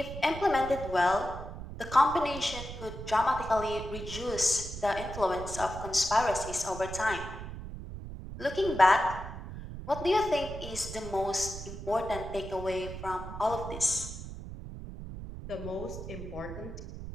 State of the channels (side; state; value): right; noise; rumble, 10 dB below the sound